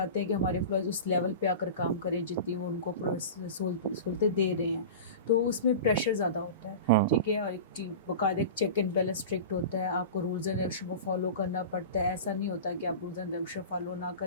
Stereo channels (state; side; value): inverted; both; correlation -0.31